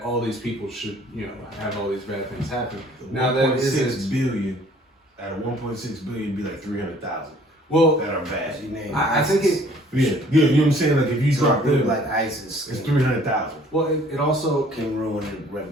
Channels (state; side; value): normal; both; correlation 0.56